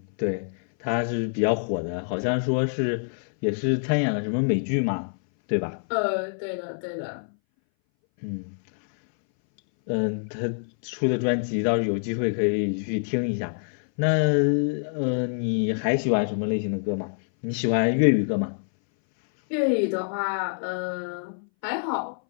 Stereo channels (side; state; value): right; silent; 60 dB below the other